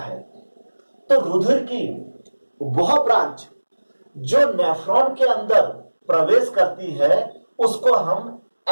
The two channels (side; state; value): both; inverted; correlation -1.00